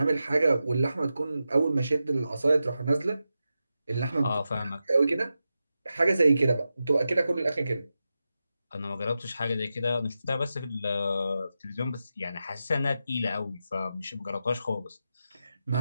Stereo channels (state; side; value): inverted; both; correlation -0.90